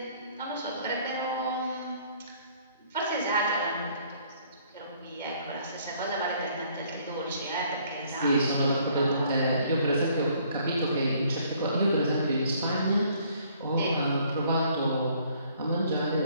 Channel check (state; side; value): inverted; both; correlation -0.62